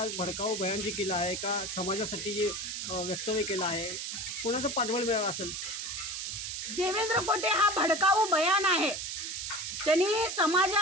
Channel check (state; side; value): noise; right; hiss, 5 dB below the sound